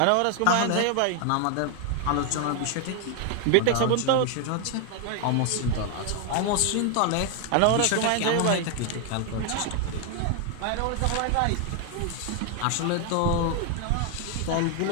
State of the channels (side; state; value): both; different; correlation 0.00